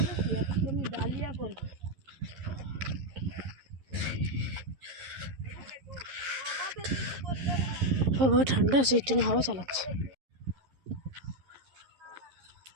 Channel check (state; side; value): late; left; 11 ms